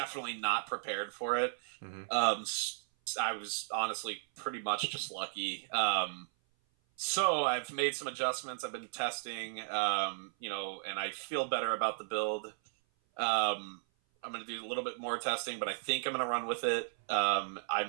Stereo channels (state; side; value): silent; left; 54 dB below the other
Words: not prepared for it. I was honestly pretty much just lucky. So I've made some adjustments. I've been testing, and I feel better about the build. I'm going to do a little bit more testing, but I think I'm going to run with it. I